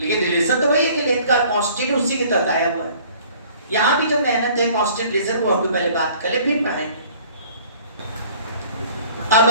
रिलेशन तो वही है कि लेंथ का कांस्टेंट उसी के तहत आया हुआ है। यहाँ भी जो मेहनत है कांस्टेंट रिलेशन, वो हम पहले बात कर ले फिर पढ़ाएंगे। अब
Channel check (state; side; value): inverted; both; correlation -0.53